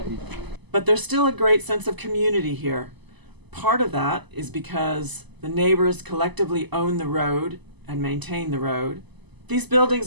But there's still a great sense of community here. Part of that is because the neighbors collectively own the road and maintain the road. These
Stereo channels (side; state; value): left; late; 1.0 ms